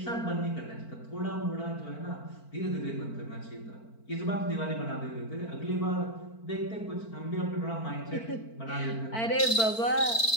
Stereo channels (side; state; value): right; late; 4.5 ms